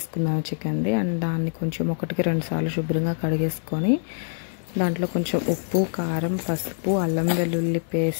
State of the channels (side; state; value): right; silent; digital silence